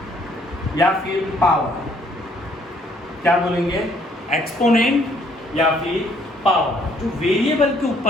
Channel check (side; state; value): both; normal; correlation 0.64